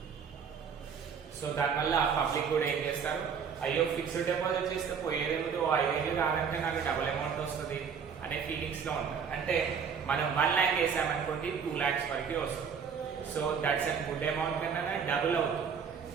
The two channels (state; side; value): quieter; left; 6.6 dB